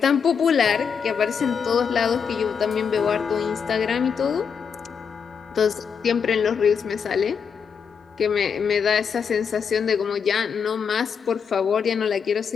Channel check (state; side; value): quieter; right; 6.6 dB